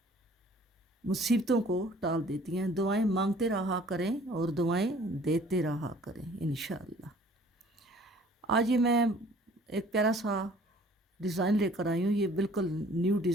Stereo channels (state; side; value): normal; both; correlation 0.53